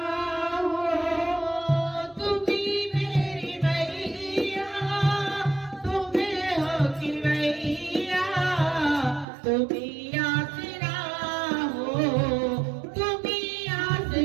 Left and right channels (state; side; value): drops out; left; at 9.2 s